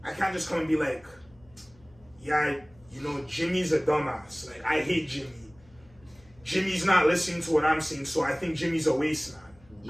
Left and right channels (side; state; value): left; noise; hum, 27 dB below the sound